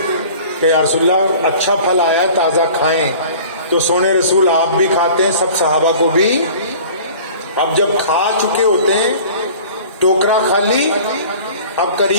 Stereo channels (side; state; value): both; inverted; correlation -0.44